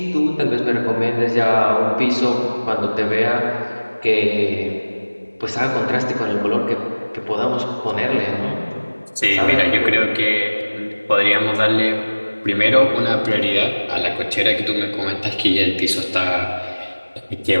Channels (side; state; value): both; inverted; correlation -1.00